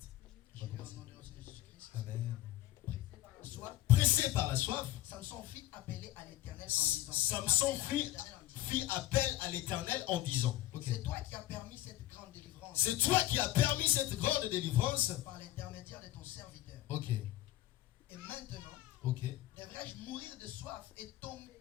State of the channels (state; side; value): quieter; right; 15.2 dB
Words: J'ai lu au nom de notre Seigneur Jésus-Christ. Amen. Pressé par la soif, Pressé par la soif, Samson fit appeler à l'Éternel en disant, Samson fit appel à l'Éternel en disant, ok. c'est toi qui as permis cette grande délivrance C'est toi qui as permis cette grande délivrance. par l'intermédiaire de ton serviteur. Ok, Et maintenant, ok. devrais-je mourir de soif et tomber